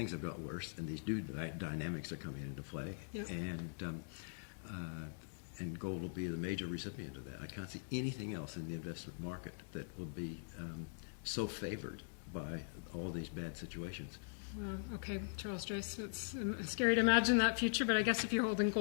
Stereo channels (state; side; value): silent; right; digital silence